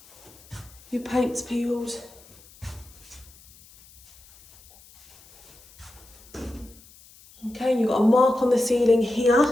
your paint's peeled. Okay, you've got a mark on the ceiling here.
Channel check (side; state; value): left; noise; hiss, 25 dB below the sound